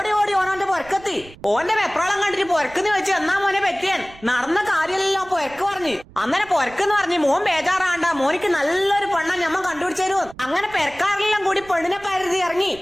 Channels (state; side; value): noise; right; rumble, 22 dB below the sound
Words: ഓനോന്റെ പൊരക്കെത്തി. ഓന്റെ വെപ്രാളം കണ്ടിട്ട് പൊരക്കെന്ന് വെച്ച് എന്നാ മോനെ പറ്റിയാൻ നടന്ന കാര്യമല്ലോ പൊരക്ക് പറഞ്ഞു. അന്നേരം പൊരക്കെന്ന് പറഞ്ഞ് മോൻ ബേജാറാണ്ട, മോനിക്ക് നല്ലൊരു പെണ്ണ ഞമ്മ കണ്ടുപിടിച്ചു. അങ്ങനെ പെരക്കാരെല്ലാം കൂടി പെണ്ണിനെ പരുതി ഇറങ്ങി.